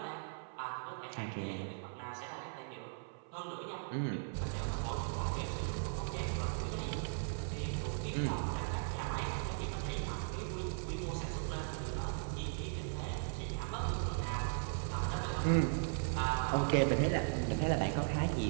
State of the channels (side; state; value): left; silent; 52 dB below the other